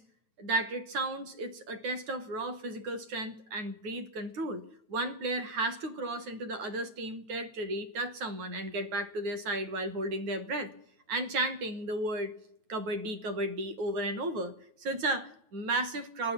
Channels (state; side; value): late; left; 9.3 ms